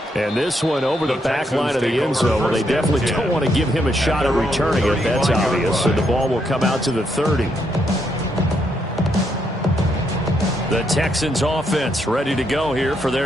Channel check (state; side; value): normal; both; correlation 0.77